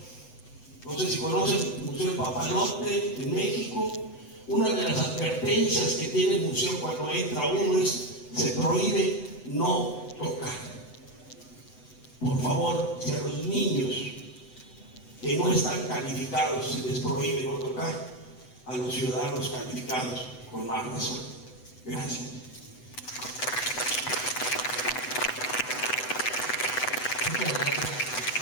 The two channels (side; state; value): right; late; 8.0 ms